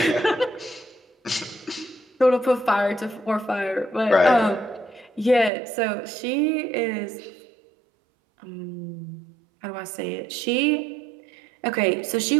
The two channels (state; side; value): drops out; left; at 5.5 s